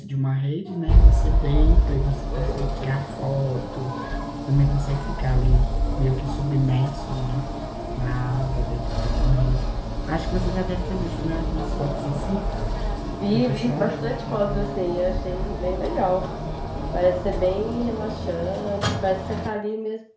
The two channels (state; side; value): identical; both; correlation 1.00